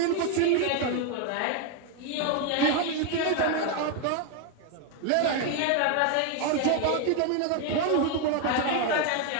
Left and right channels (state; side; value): different; both; correlation 0.01